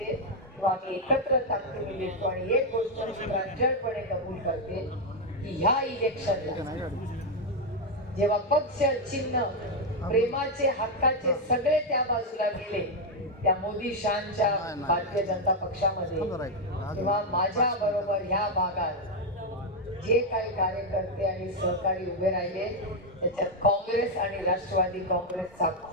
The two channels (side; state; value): both; normal; correlation 0.02